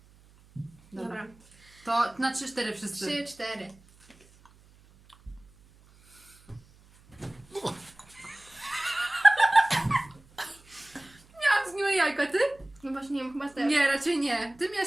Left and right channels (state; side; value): noise; right; hum, 28 dB below the sound